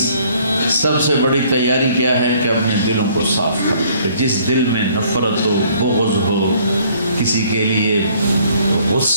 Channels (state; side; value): inverted; both; correlation -0.60